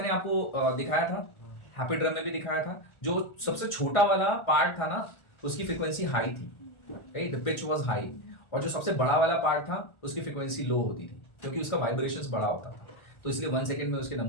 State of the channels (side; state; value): right; late; 1.4 ms